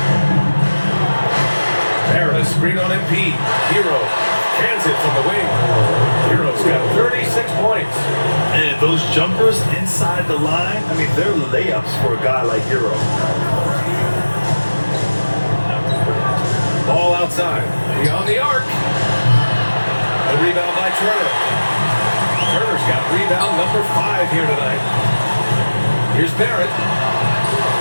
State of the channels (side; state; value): both; inverted; correlation -1.00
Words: Barrett, a screen on MP. Hero cans it from the wing. Hero's got 36 points. And those jumpers inside the line, I mean, they're layups for a guy like Hero. Ball outside. Beyond the arc. A rebound by Turner. Turner's got rebound number 5 here tonight. Here's Barrett.